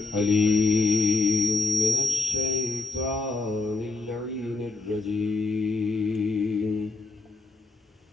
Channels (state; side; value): quieter; right; 3.3 dB